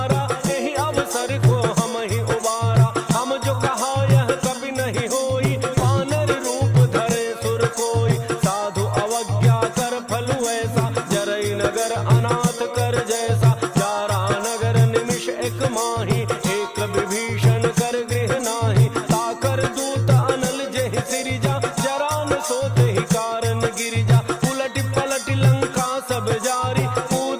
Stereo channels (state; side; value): identical; both; correlation 1.00